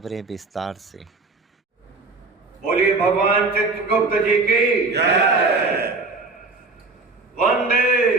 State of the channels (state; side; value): quieter; left; 3.7 dB